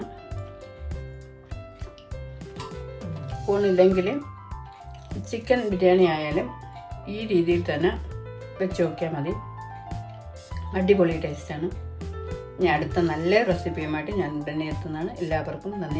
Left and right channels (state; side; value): identical; both; correlation 1.00